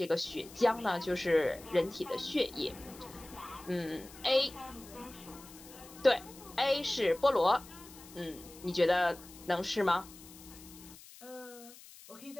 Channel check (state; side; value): noise; left; hiss, 19 dB below the sound